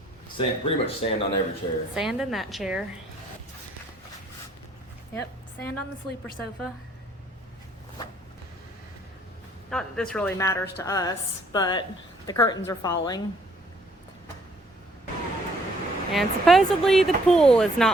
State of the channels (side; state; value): both; normal; correlation 0.63